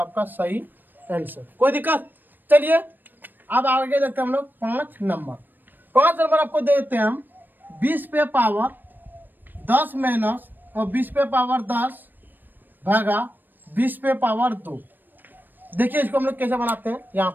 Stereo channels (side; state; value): left; late; 0.092 ms